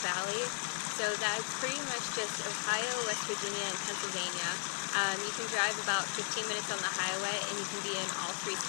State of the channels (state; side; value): silent; right; 54 dB below the other